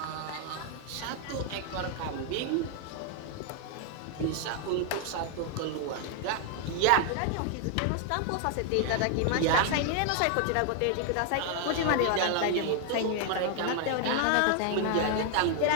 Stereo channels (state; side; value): different; both; correlation 0.00